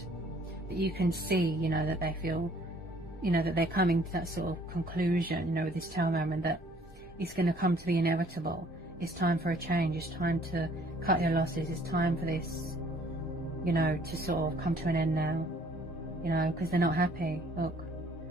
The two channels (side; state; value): both; normal; correlation 0.59